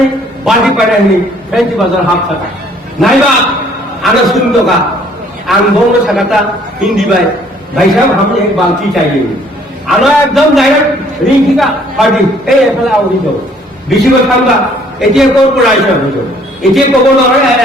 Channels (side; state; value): both; normal; correlation 0.60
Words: বাড়ি পাড়ায় নেই ফেন্সি বাজার হাফ থাকা নাইবা আনা শুনতো কা आं बोंनो सकता हिंदी भाई साहब हमें एक बाल्टी चाहिए आना एकदम डायरेक्ट रिंकी का पार्टी ए एफला आवरी दो बेसि কথা আমরা এতিয়া কোন পড়াইছে হইছো এতিয়া কব নয়